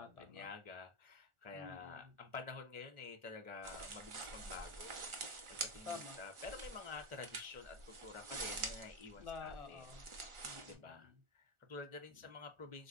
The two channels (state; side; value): late; left; 1.4 ms